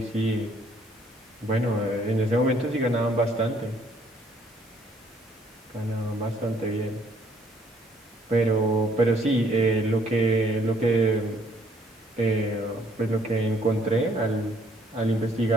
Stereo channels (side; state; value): both; normal; correlation 0.64